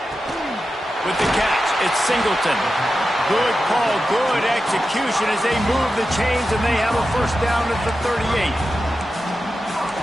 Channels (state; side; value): normal; both; correlation 0.91